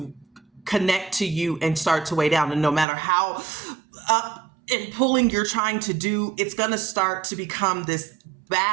connect to you and start to weigh down. And no matter how up and pulling you're trying to do, it's going to start to become this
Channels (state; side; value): drops out; left; at 2.9 s